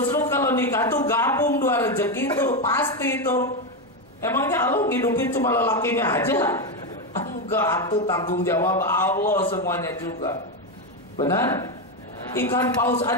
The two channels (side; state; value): both; normal; correlation 0.10